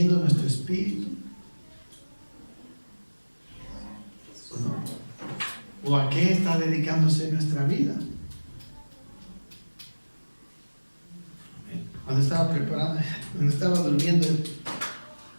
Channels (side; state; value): both; inverted; correlation -1.00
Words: nuestro espíritu? ¿O no? ¿O a qué está dedicándose nuestra vida? Cuando estaba preparando, cuando estaba durmiendo